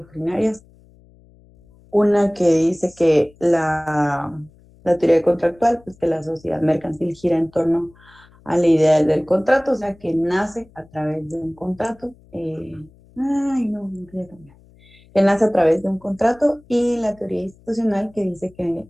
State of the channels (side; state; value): left; noise; hum, 28 dB below the sound